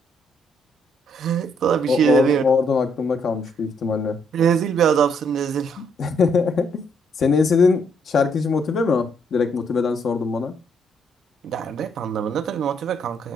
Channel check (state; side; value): normal; both; correlation 0.71